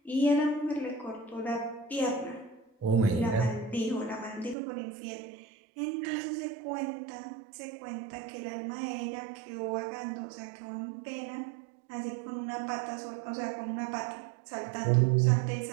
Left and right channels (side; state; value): left; drops out; at 4.5 s